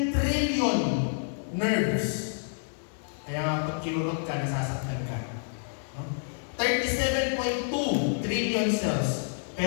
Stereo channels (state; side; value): silent; right; digital silence